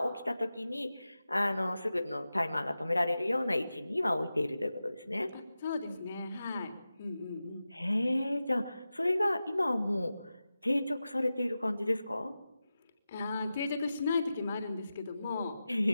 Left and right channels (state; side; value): inverted; both; correlation -0.93